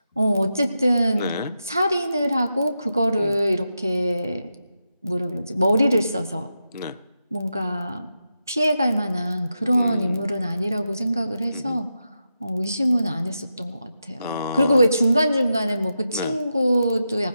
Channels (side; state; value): both; inverted; correlation -0.88